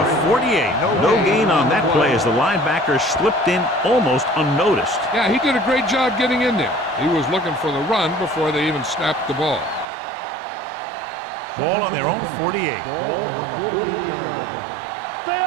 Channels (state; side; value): drops out; left; at 9.9 s